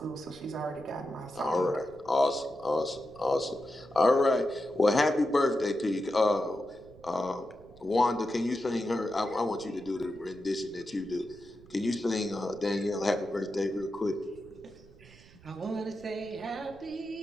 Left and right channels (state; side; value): noise; right; rumble, 23 dB below the sound